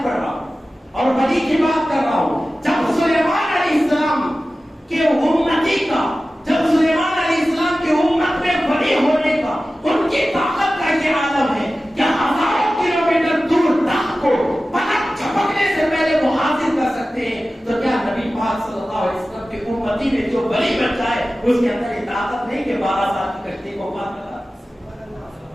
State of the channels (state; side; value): normal; both; correlation 0.95